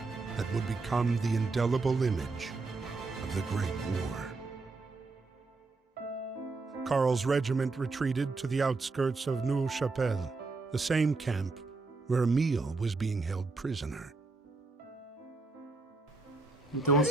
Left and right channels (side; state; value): left; quieter; 3.7 dB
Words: that would become the indelible image of the Great War. Karl's regiment retreated to the outskirts of Neuve-Chapelle, the same camp where Emile was being held prisoner. Então